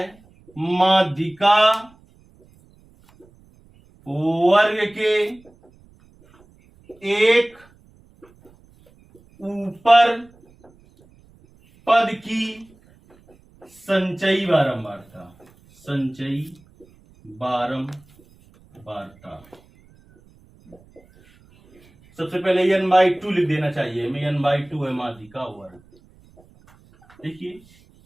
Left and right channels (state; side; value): noise; right; rumble, 29 dB below the sound